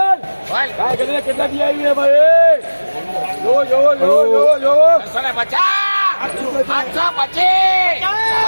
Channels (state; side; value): inverted; both; correlation -1.00